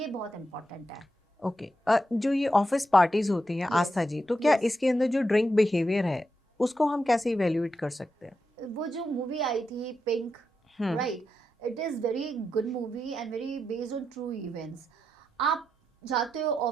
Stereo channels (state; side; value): normal; both; correlation 0.86